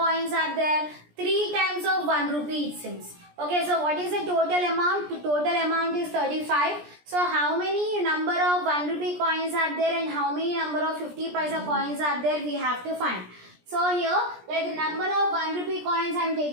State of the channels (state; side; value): late; left; 17 ms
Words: are there? 3 times of 1 rupee it seems. Okay, so what is the total amount? The total amount is 35. So how many number of 1 rupee coins are there and how many number of 50 paisa coins are there? We have to find. So here, like the number of 1 rupee coins I am